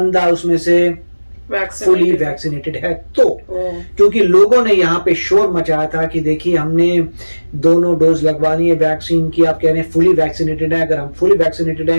उसमें से फुली वैक्सीनेटेड है तो, क्योंकि लोगों ने यहाँ पे शोर मचाया था कि देखिए हमने दोनों डोज लगवानी है वैक्सीन की, आप कह रहे हैं फुली वैक्सीनेटेड है, अगर हम फुली वैक्सीनेटेड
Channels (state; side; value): inverted; both; correlation -1.00